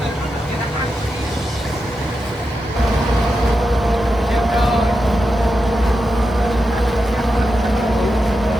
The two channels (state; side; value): normal; both; correlation 0.88